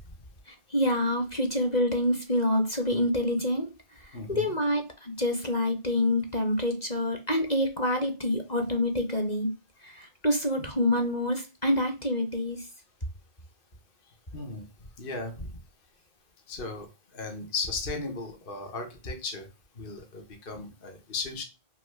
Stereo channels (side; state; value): right; late; 2.0 ms